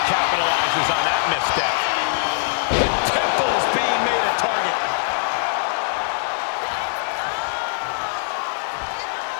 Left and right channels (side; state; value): right; silent; digital silence